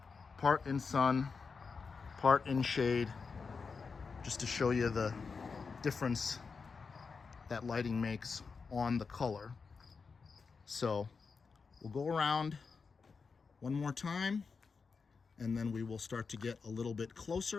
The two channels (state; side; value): quieter; right; 5.1 dB